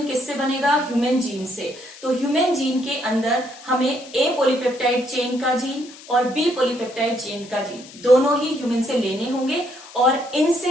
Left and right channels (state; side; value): noise; left; hiss, 19 dB below the sound